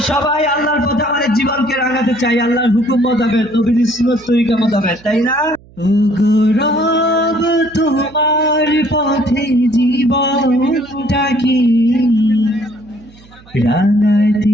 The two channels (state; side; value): noise; right; hum, 25 dB below the sound